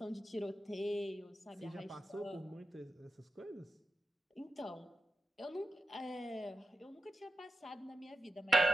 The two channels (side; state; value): both; normal; correlation 0.90